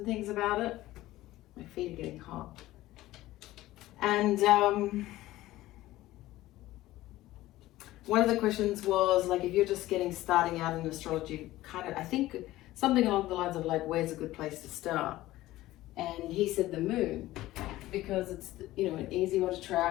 things about it. My feet are getting hot. And one of the questions was like, if you're just starting out in astrology, kind of, I think something along the lines of like, where's a good place to start? And he said the moon, because it's, you know, an easy one to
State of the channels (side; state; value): right; quieter; 16.3 dB